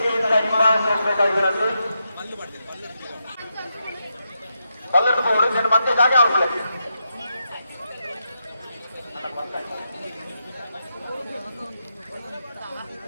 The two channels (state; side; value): inverted; both; correlation -0.84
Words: ಹಿಂಭಾಗಬೇಕಾಗಿರಂತೆ ಪಲ್ಲಟ್ಟು ಹೋಗೋದು నేను ಮತ್ತೆ ಜಾಗ ಆಗುದಿಲ್ಲ